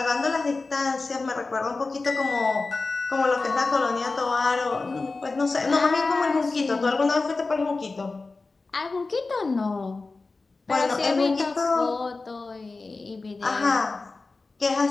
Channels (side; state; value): right; quieter; 3.7 dB